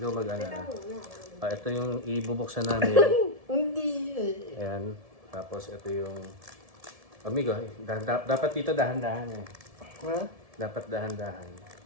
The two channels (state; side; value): late; left; 1.7 ms